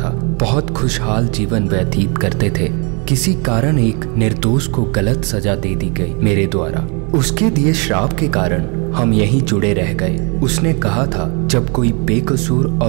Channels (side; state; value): left; quieter; 33.7 dB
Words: बहुत खुशहाल जीवन व्यतीत करते थे। किसी कारण एक निर्दोष को गलत सजा दे दी गई मेरे द्वारा। उसके दिए श्राप के कारण हम यहीं जुड़े रह गए। उसने कहा था, जब कोई बेकसूर